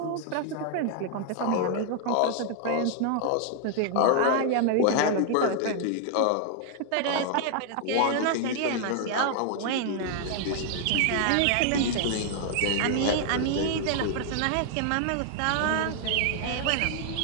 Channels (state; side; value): different; both; correlation 0.00